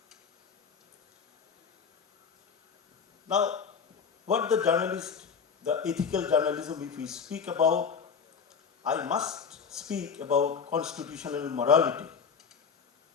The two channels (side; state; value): right; quieter; 6.3 dB